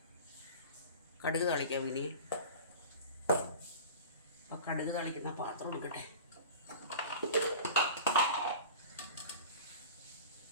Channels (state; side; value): inverted; both; correlation -0.38